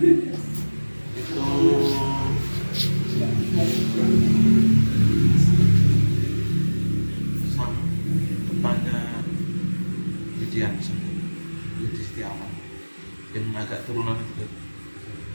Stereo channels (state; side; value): inverted; both; correlation -1.00